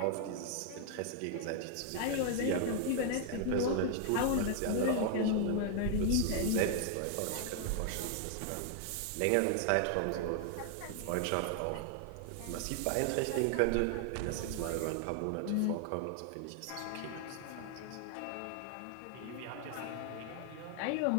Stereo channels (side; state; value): both; different; correlation 0.00